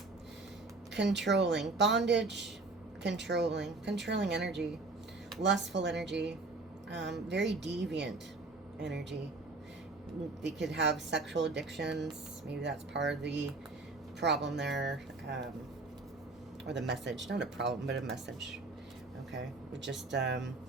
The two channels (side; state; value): left; quieter; 3.4 dB